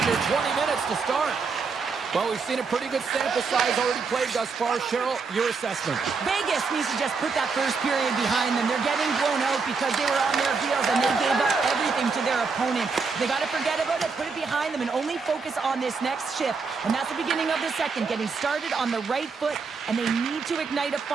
20 minutes to start. Well, we've seen a pretty good sample size already played thus far. Cheryl, your assessment. Vegas needs to just put that first period behind them. They're getting blown out because they were on their heels and they gave up everything to their opponent. They got to forget about it, put it behind them, and only focus on this next shift. And that's the beginning of the second, getting started on the right foot, and they need to ignite a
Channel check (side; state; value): left; quieter; 4.9 dB